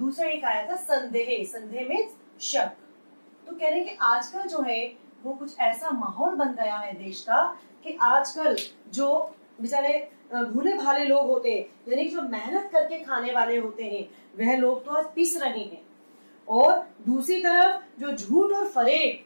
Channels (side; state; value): both; inverted; correlation -1.00